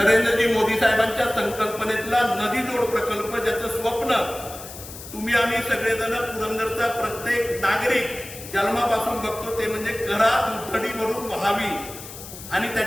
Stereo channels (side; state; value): left; noise; hiss, 13 dB below the sound